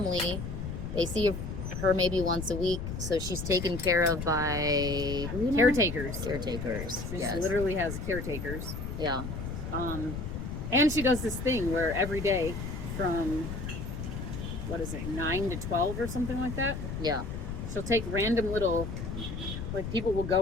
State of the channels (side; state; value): left; noise; rumble, 6 dB below the sound